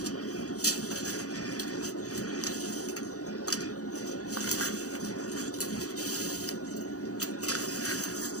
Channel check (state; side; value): late; right; 0.66 ms